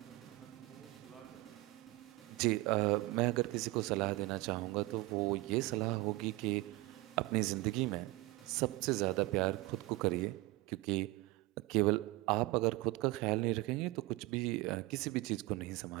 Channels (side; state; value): left; quieter; 20.9 dB